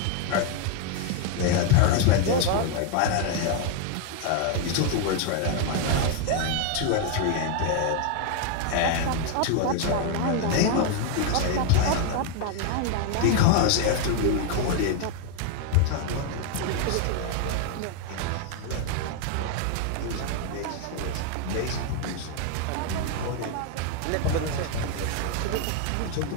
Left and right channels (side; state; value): both; different; correlation 0.00